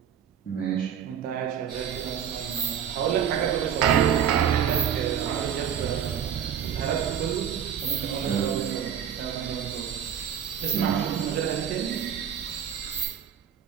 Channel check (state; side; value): quieter; left; 8.8 dB